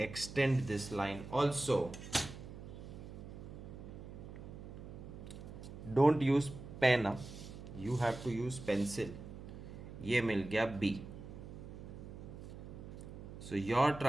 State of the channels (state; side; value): noise; right; hum, 12 dB below the sound